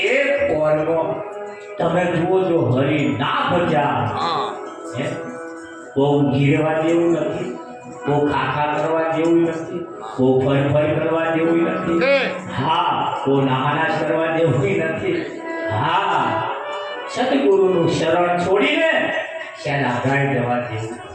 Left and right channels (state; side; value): identical; both; correlation 1.00